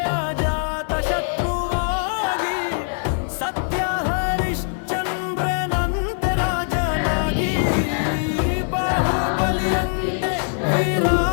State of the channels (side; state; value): right; silent; 64 dB below the other